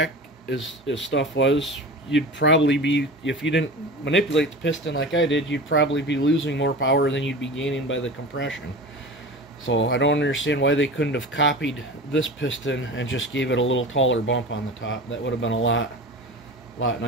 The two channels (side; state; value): both; normal; correlation 0.32